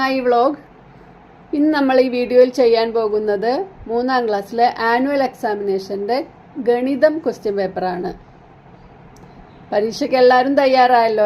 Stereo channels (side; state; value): both; identical; correlation 1.00